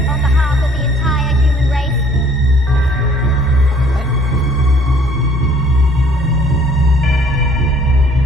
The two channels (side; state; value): both; normal; correlation 0.58